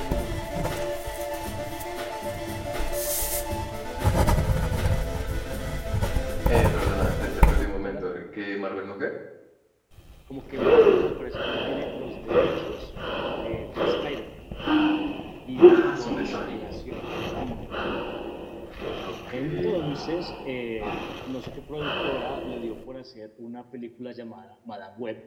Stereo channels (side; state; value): both; identical; correlation 1.00